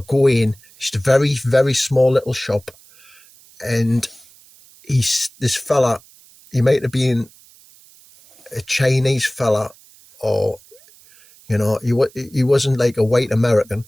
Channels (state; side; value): noise; right; hiss, 26 dB below the sound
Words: go in. It's a very, very small little shop. And this fella, he might have been a Chinese fella, or, he wasn't like a white American.